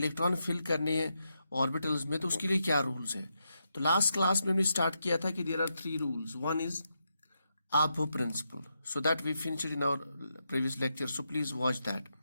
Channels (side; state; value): both; inverted; correlation -0.83